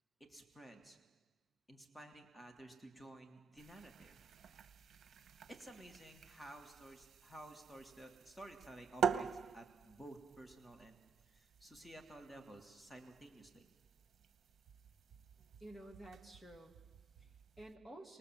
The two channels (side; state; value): left; quieter; 5.9 dB